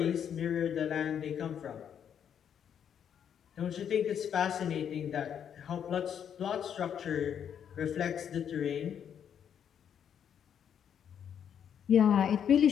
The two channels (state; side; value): quieter; right; 8.5 dB